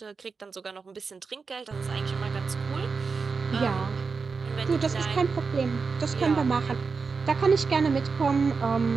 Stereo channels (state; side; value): quieter; left; 4.9 dB